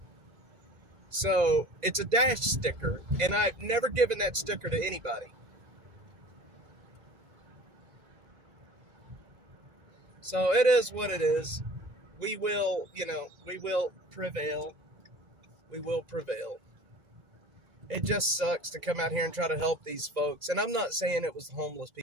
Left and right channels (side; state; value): left; late; 2.0 ms